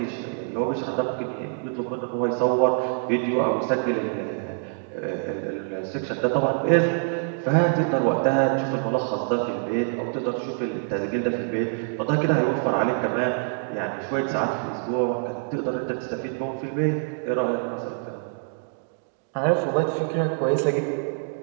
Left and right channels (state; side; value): silent; left; 61 dB below the other